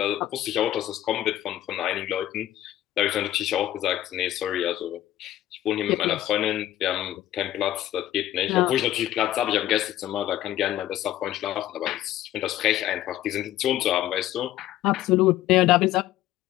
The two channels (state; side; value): quieter; right; 13.5 dB